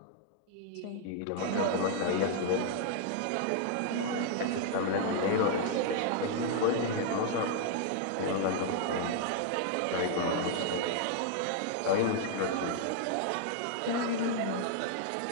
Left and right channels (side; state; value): both; different; correlation 0.00